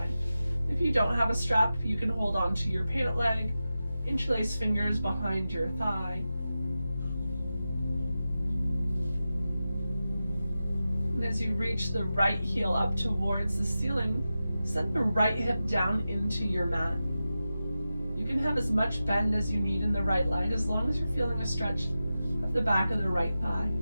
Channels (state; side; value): inverted; both; correlation -0.93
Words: If you don't have a strap, you can hold on to your pant leg, interlace fingers behind your thigh. And as you reach the right heel up towards the ceiling, send the right hip down into your mat. You can have as much bend as you need in the right leg as long as you're feeling a stretch of the back of the right thigh.